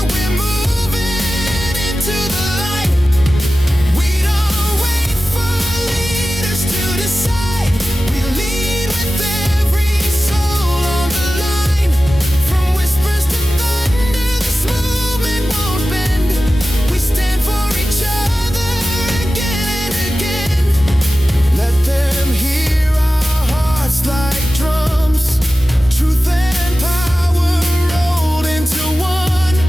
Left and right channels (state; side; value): normal; both; correlation 0.95